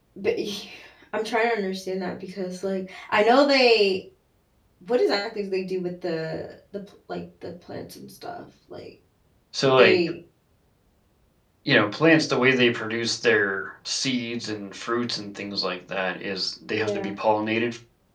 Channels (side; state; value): both; identical; correlation 1.00